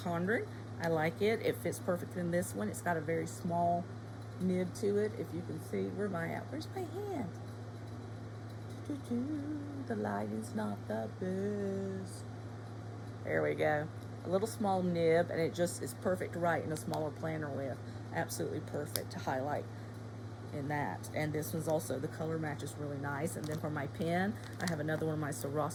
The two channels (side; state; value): both; identical; correlation 1.00